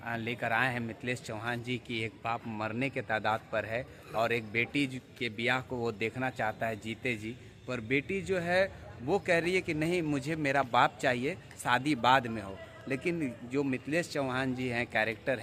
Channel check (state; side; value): identical; both; correlation 1.00